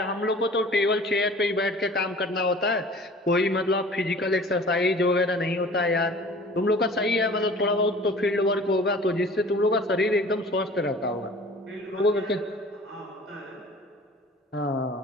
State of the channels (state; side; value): normal; both; correlation 0.45